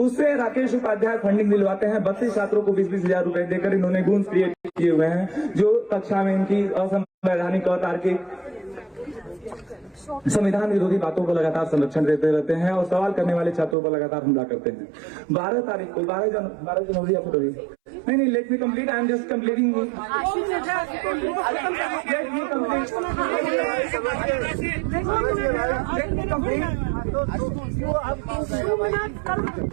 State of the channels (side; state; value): left; drops out; at 13.8 s